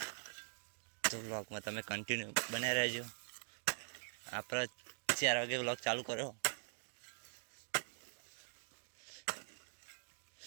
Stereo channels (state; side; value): silent; left; digital silence